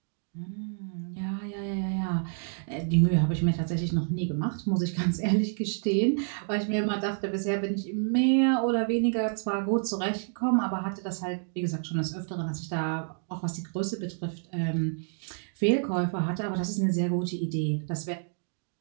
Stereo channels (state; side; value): silent; left; 59 dB below the other